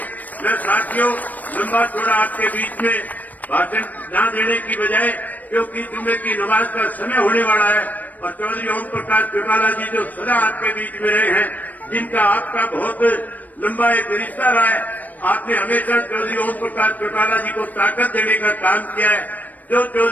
मैं साथियों लंबा चौड़ा आपके बीच में भाषण न देने की बजाय, क्योंकि जुम्मे की नमाज का समय होने वाला है और चौधरी ओम प्रकाश चौटाला जी जो सदा आपके बीच में रहे हैं, जिनका आपका बहुत लंबा एक रिश्ता रहा है, आपने हमेशा चौधरी ओम प्रकाश चौटाला जी को ताकत देने का काम किया है। जो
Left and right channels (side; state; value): right; late; 0.080 ms